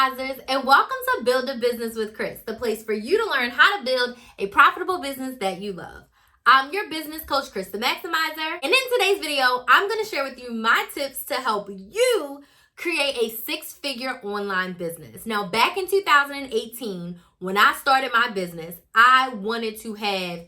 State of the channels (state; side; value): identical; both; correlation 1.00